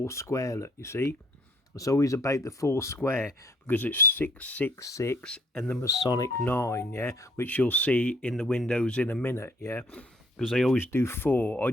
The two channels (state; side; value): normal; both; correlation 0.61